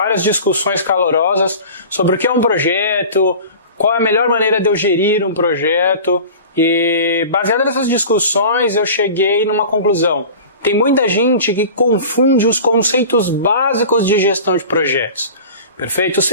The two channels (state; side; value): inverted; both; correlation -0.37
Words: discussões calorosas sobre o que é um projeto, qual é a melhor maneira de eu gerir um projeto. E baseado nessas discussões eu cheguei numa conclusão. Tem muita gente que confunde os conceitos básicos de gestão de projetos. Perfeito?